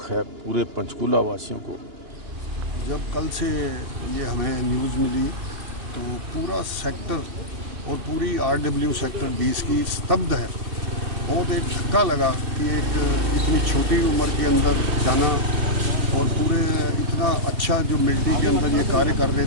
है पूरे पंचकूला वासियों को। जब कल से ये हमें न्यूज़ मिली तो पूरा सेक्टर और पूरी RW सेक्टर 20 की स्तब्ध है। बहुत एक धक्का लगा कि एक इतनी छोटी उम्र के अंदर जाना और पूरे इतना अच्छा जो मिलिट्री के अंदर ये कार्य कर रहे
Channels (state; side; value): late; left; 2.9 ms